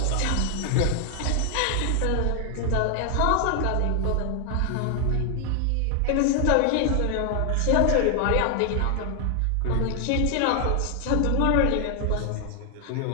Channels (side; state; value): both; different; correlation 0.00